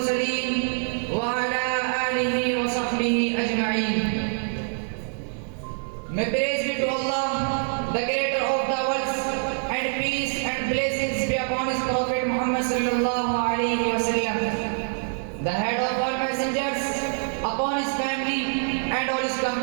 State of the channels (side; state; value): left; silent; 59 dB below the other